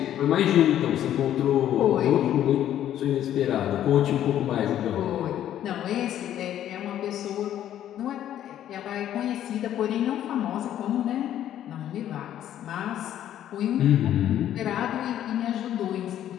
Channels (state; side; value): quieter; right; 11.4 dB